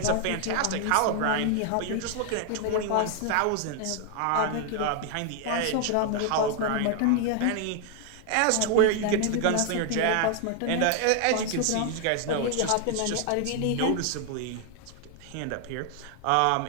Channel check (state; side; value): different; both; correlation 0.00